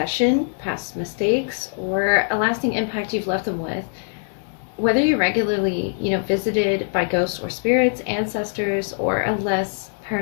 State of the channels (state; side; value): silent; right; digital silence